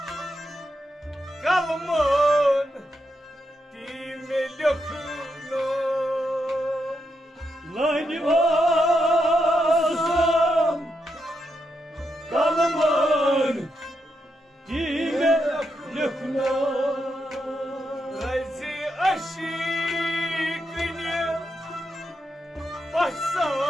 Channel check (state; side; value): normal; both; correlation 0.83